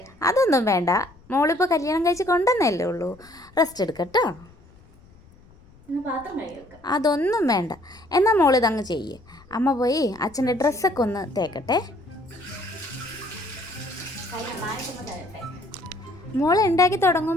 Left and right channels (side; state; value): left; noise; rumble, 26 dB below the sound